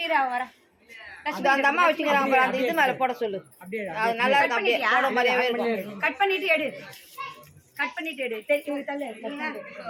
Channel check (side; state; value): both; identical; correlation 1.00